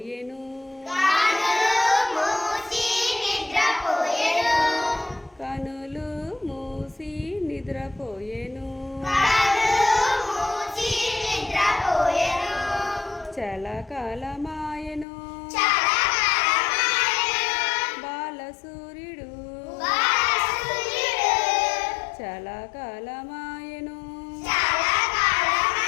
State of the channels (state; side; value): drops out; right; at 15.1 s